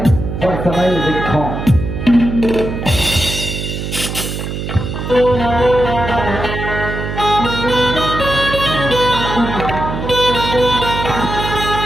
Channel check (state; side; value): noise; right; hum, 5 dB below the sound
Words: और समय देखो।